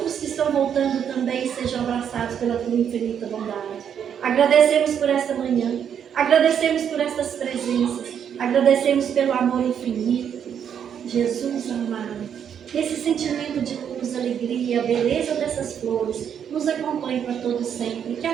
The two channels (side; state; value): left; quieter; 8.4 dB